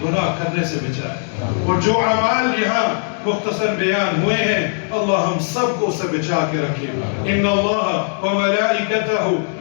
گناہ کرنے سے بچائے، اور جو اعمال یہاں مختصر بیان ہوئے ہیں اللہ ہم سب کو اسے بچا کے رکھے۔ ان اللہ وملائکتہ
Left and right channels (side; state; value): right; silent; digital silence